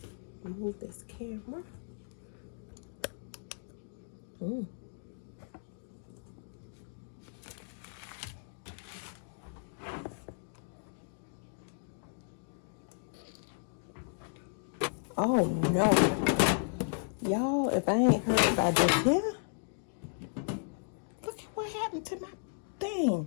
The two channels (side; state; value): right; silent; digital silence